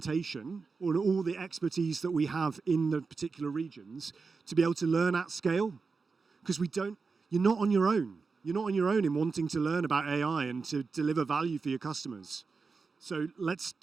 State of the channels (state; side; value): quieter; left; 4.6 dB